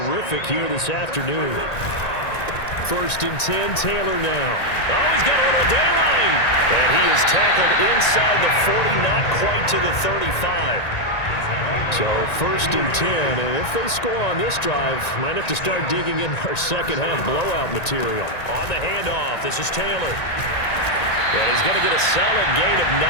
here this afternoon. 1st and 10, Taylor now. Oh, he's got a little daylight. And he is tackled inside the 40, not quite to the 35. So 1st and 10, and if they score on this drive, might have to start digging in our second half blowout material. On the handoff, this is Taylor. And he's going to get a solid gain of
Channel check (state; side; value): late; right; 1.9 ms